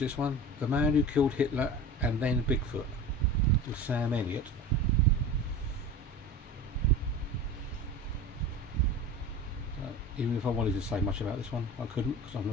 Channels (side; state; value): both; normal; correlation 0.34